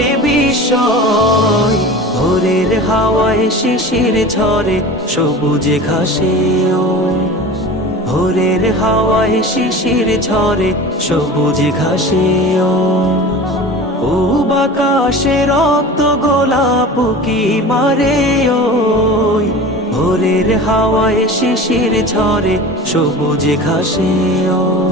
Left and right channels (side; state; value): both; normal; correlation 0.35